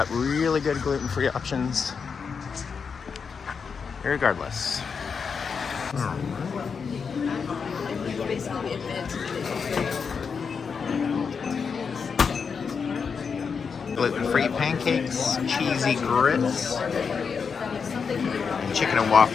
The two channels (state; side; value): quieter; right; 5.8 dB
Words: really good gluten-free options. Irregardless. Gluten-free pancakes, cheesy grits, and chicken and